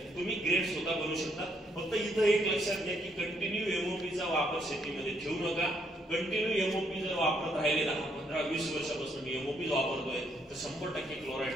तुम्ही ग्रेड स्वतः बनवू शकता. फक्त इथं एक लक्षात घ्या की कंटिन्यू एमओपीचा वापर शेतीमध्ये ठेवू नका. कंटिन्यू एमओपी जर वापरत राहिले 10, 15, 20 वर्षापासून मी एमओपी वापरतोय तर 100%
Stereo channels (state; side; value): normal; both; correlation 0.72